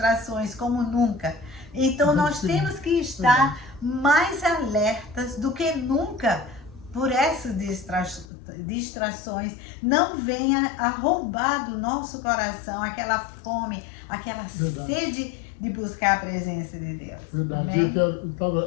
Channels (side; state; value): right; drops out; at 8.2 s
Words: como nunca. Então nós temos que estar mais alertas do que nunca por essas distrações. Não venha a roubar do nosso coração aquela fome, aquela sede de buscar a presença de Deus. Verdade. Amém? Eu